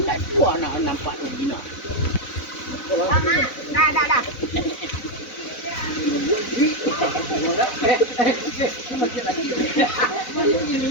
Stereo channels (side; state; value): right; late; 4.0 ms